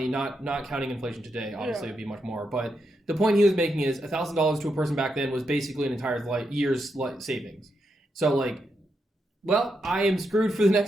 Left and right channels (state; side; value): normal; both; correlation 0.83